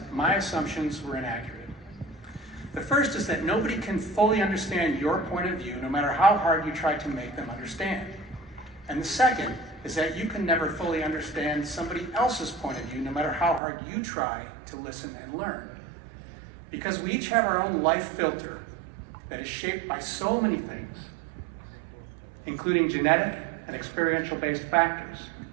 my assumptions were inaccurate. The first is that nobody can fully understand your point of view, no matter how hard you try to make them understand. And the second is that you can never fully understand somebody else's point of view, no matter how hard you try to listen and learn. Because we each have our own life filter that is shaped by so many things, including genetic and experiential-based factors.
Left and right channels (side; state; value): left; drops out; at 13.6 s